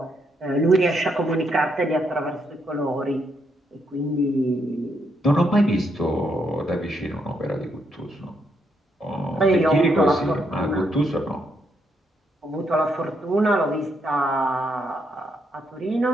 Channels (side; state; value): both; normal; correlation 0.77